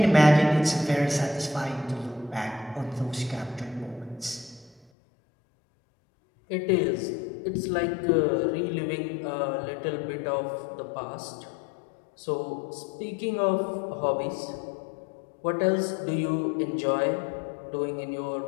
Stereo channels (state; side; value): drops out; right; at 4.9 s